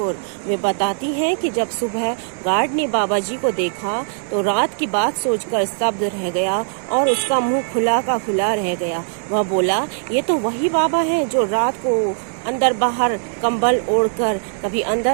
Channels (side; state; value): left; silent; digital silence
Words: वे बताती हैं कि जब सुबह गार्ड ने बाबा जी को देखा तो रात की बात सोचकर स्तब्ध रह गया और उसका मुंह खुला का खुला रह गया। वह बोला, ये तो वही बाबा हैं जो रात को अंदर बाहर कंबल ओढ़कर कभी